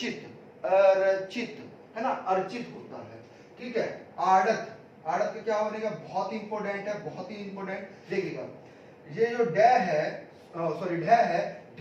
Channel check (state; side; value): identical; both; correlation 1.00